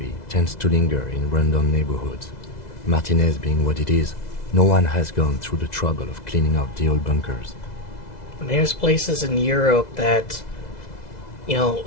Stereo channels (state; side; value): late; right; 2.0 ms